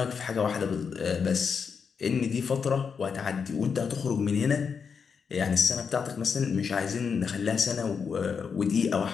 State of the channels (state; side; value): quieter; right; 6.1 dB